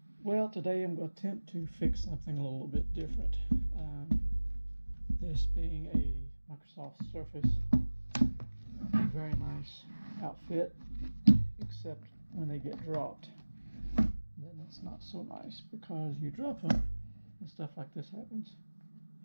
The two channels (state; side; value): inverted; both; correlation -1.00